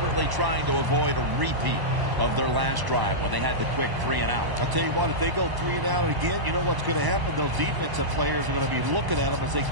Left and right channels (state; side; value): late; left; 1.0 ms